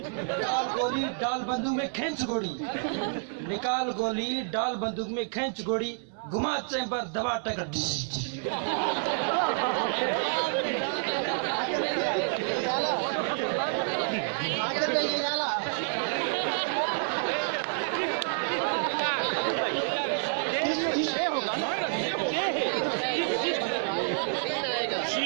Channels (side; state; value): left; silent; 59 dB below the other